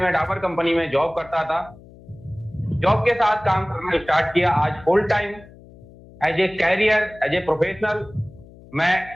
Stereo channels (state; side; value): noise; left; hum, 22 dB below the sound